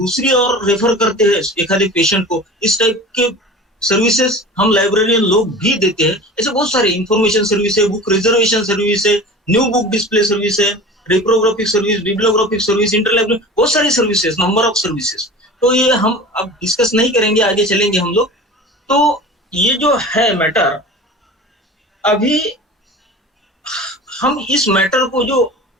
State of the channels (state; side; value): normal; both; correlation 0.37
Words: और रेफर करते हैं एक पेशेंट को, इस टाइप के सर्विसेज हम लाइब्रेरियन लोग भी देते हैं। ऐसे बहुत सारे इंफॉर्मेशन सर्विस है, बुक रिजर्वेशन सर्विस है, न्यू बुक डिस्प्ले सर्विस है, रिप्रोग्राफिक सर्विस, बिब्लियोग्राफिक सर्विस, इंटरलाइब्रेरी, बहुत सारी सर्विसेज, नंबर ऑफ सर्विसेज। तो ये हम अब डिस्कस नहीं करेंगे, आगे चलेंगे हम लोग। तो ये जो है मैटर, अभी हम इस मैटर को, जो